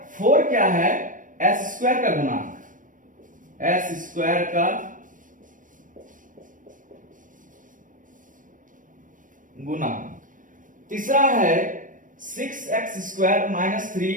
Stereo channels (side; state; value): left; late; 0.38 ms